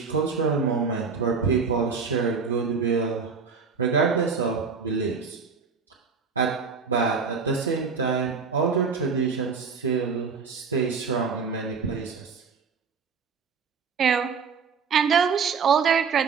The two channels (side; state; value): left; quieter; 5.5 dB